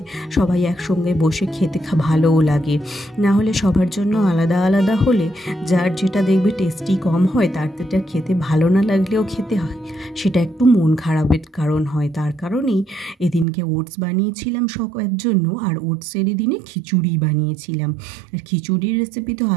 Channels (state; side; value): drops out; left; at 13.5 s